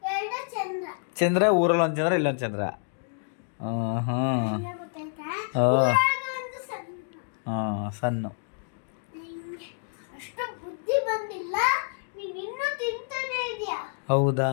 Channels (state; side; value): silent; right; digital silence